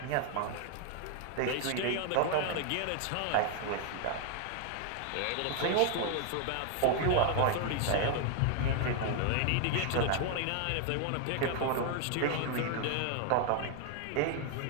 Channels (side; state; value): both; different; correlation 0.00